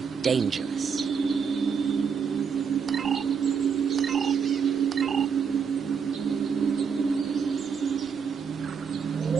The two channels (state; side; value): quieter; left; 6.4 dB